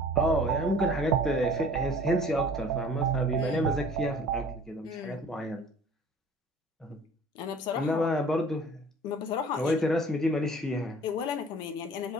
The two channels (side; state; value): both; normal; correlation 0.48